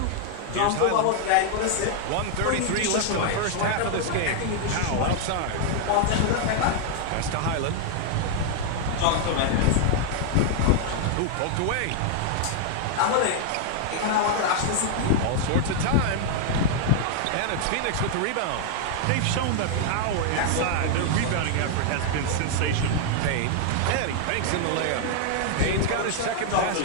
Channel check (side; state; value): both; different; correlation 0.00